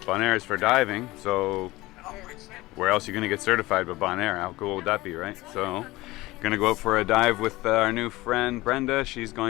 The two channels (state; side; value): quieter; right; 19.5 dB